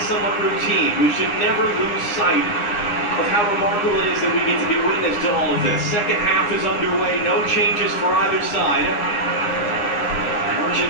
routine. We should never lose sight of how remarkable it is that we get to be witness to all of this. Second half is underway. No changes for either side.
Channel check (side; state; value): right; late; 9.5 ms